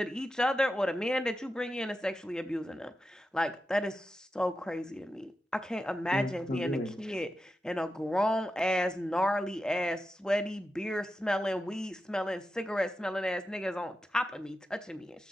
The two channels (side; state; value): both; normal; correlation 0.90